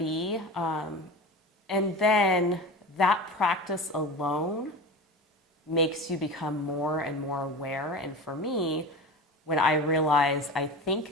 And then that practice alone makes you become more and more aware. And for me, when I realize I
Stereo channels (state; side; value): normal; both; correlation 0.31